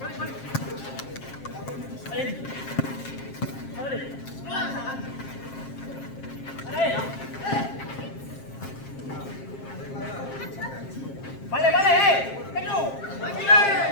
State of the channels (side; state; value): right; late; 7.5 ms